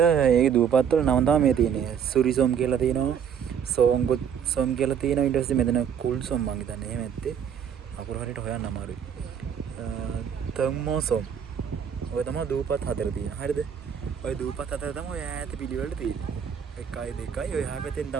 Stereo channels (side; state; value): left; quieter; 8.0 dB